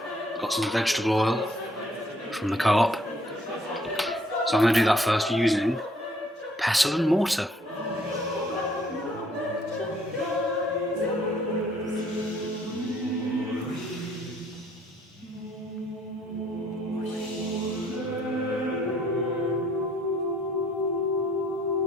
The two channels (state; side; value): normal; both; correlation 0.64